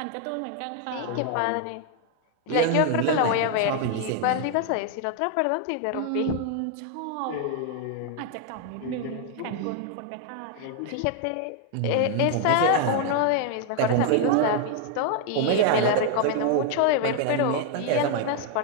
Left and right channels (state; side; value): different; both; correlation 0.00